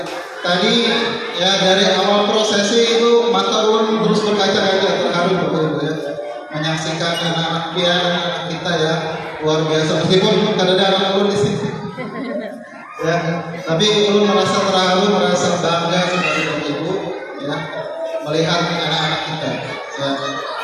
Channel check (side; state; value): both; identical; correlation 1.00